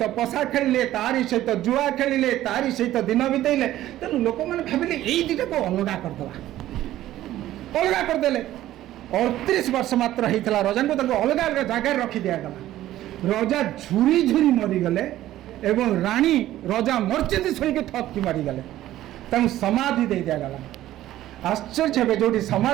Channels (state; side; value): quieter; left; 14.0 dB